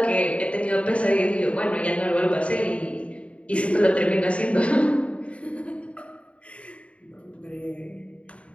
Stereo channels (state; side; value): late; right; 0.062 ms